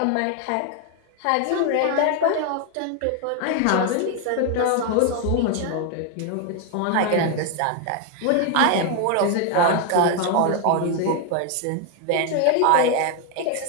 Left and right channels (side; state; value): both; different; correlation 0.01